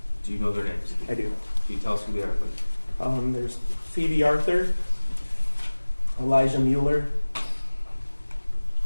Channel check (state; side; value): inverted; both; correlation -1.00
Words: Do you know their names? I do. Can you tell us who they are, please? There's Phoebe Arthur, Elijah Mueller,